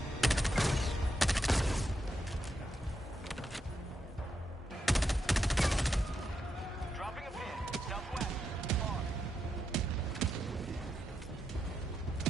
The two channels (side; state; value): both; normal; correlation 0.84